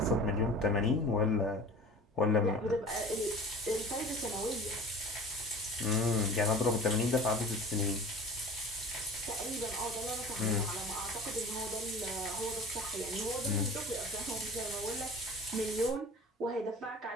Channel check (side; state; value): both; normal; correlation 0.41